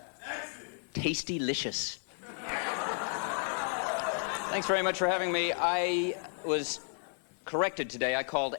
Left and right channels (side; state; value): right; silent; 56 dB below the other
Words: Tasty-licious. Thanks very much for having me. I was corrected today. I called